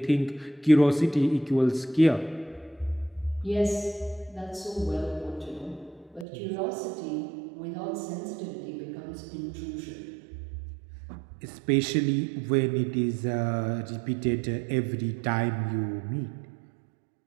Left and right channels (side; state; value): left; drops out; at 6.2 s